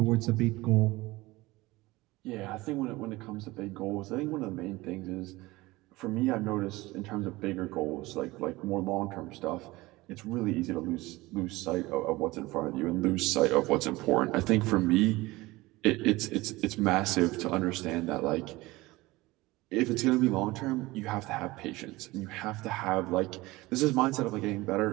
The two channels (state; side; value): quieter; left; 20.3 dB